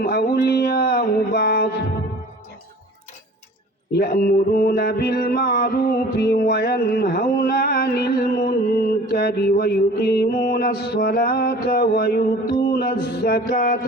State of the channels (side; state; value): both; normal; correlation 0.45